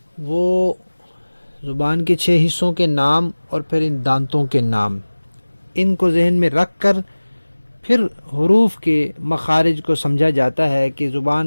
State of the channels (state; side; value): inverted; both; correlation -1.00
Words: وہ زبان کے 6 حصوں کے نام اور پھر ان دانتوں کے نام، ان کو ذہن میں رکھ کر پھر حروف کے مخارج کو سمجھا جاتا ہے کہ